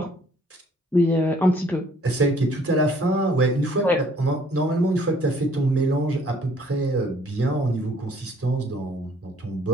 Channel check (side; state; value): both; normal; correlation 0.60